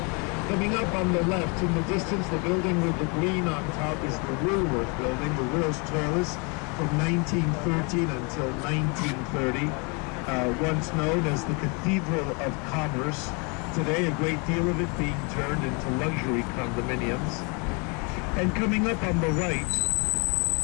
Coming up on the left, in the distance, the building with the green on top is the Woolworth Building, the world's tallest, from 1913 until 1930. Once known as the Cathedral of Commerce. Today, a great deal of it being turned into luxury condominiums. And coming up on the right,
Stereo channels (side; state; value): right; quieter; 32.8 dB